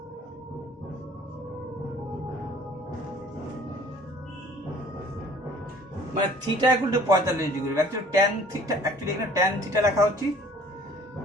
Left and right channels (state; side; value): normal; both; correlation 0.53